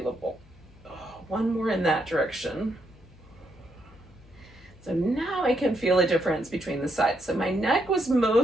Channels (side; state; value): left; noise; hum, 24 dB below the sound